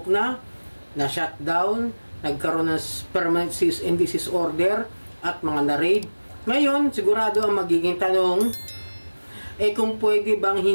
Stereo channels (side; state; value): both; inverted; correlation -1.00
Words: na shutdown, nagkaroon ng permanent cease and desist order, at mga na-raid. Ngayon, sigurado ang magiging tanong, kung pwede bang